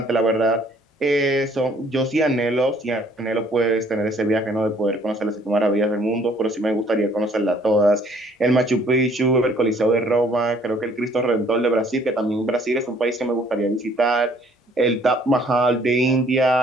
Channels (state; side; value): normal; both; correlation 0.60